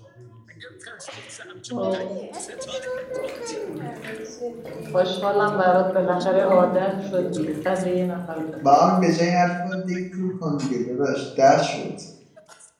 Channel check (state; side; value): identical; both; correlation 1.00